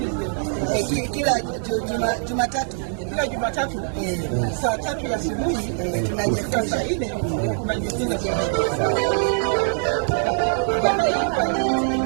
Kila Jumatatu. Kila Jumatatu saa 3 ya asubuhi tunajifunza saa 4 tunajifunza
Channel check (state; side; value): silent; left; 62 dB below the other